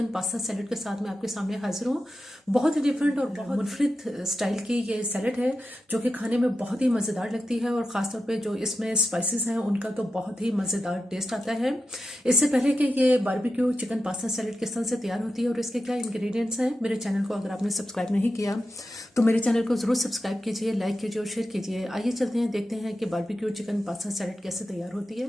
pasta salad के साथ मैं आपके सामने हाजिर हूँ। बहुत ही डिफरेंट और बहुत मुनफरिद स्टाइल की ये सैलेड है जो कि खाने में बहुत ही मज़ेदार लगती है और ख़ासतौर पे जो इसमें स्पाइसेस हैं उनका तो बहुत ही मज़ेदार टेस्ट आता है। इससे पहले कि ये बारबेक्यू चिकन पास्ता सैलेड किस तरह से तैयार होती है और इसके क्या इंग्रेडिएंट्स हैं, मेरे चैनल को अगर आपने सब्सक्राइब नहीं किया तो मेरे चैनल को ज़रूर सब्सक्राइब कीजिए, लाइक कीजिए और शेयर कीजिए। आइए चलते हैं, देखते हैं कि बारबेक्यू चिकन पास्ता सैलेड कैसे तैयार होती है।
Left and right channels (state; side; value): normal; both; correlation 0.90